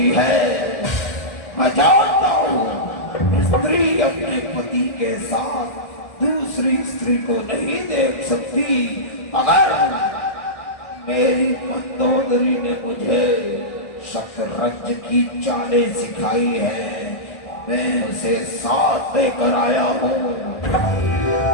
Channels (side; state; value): right; late; 1.4 ms